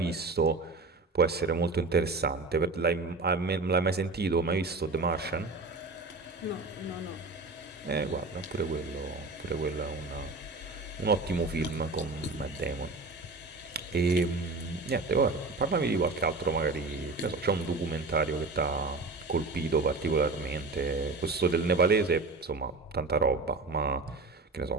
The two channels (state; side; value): quieter; left; 3.6 dB